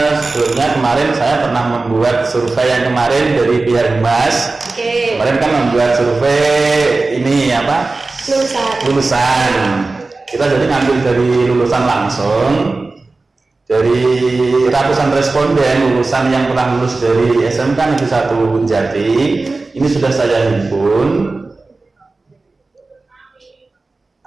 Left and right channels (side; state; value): left; quieter; 3.5 dB